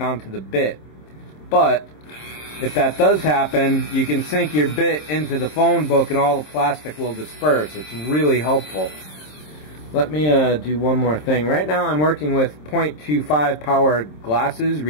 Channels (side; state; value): right; late; 26 ms